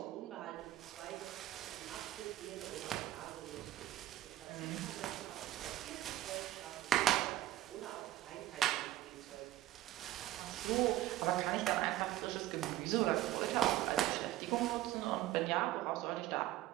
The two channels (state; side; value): quieter; left; 14.6 dB